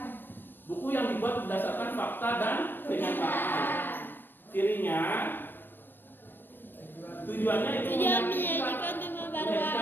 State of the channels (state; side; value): late; right; 0.095 ms